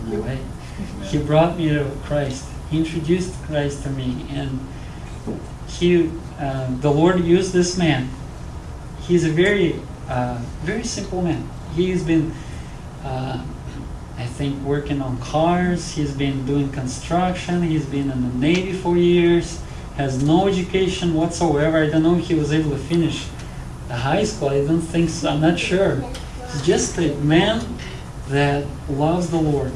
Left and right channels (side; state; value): both; identical; correlation 1.00